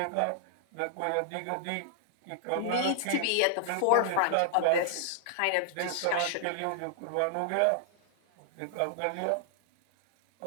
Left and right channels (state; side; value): different; both; correlation -0.01